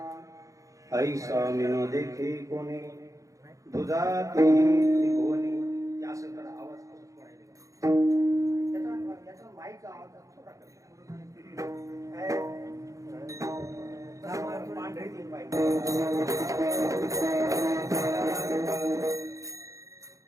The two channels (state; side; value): late; left; 0.16 ms